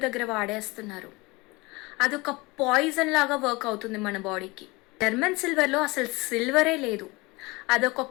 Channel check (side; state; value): right; quieter; 23.9 dB